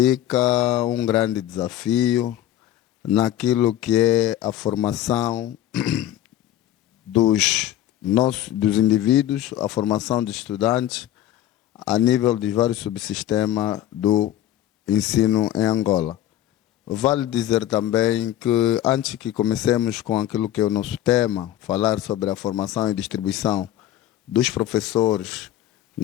um grande desafio naquilo que é a formação dos indivíduos, a formação de estudantes a nível de vários subsistemas do ensino em Angola. Vale dizer também que antes que comecemos com aquilo que é o nosso tema, falar sobre a formação e distribuição dos professores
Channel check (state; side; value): quieter; right; 12.7 dB